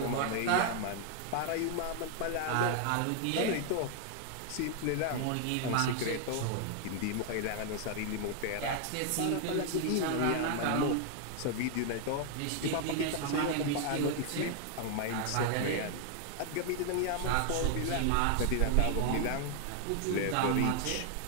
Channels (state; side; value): different; both; correlation 0.00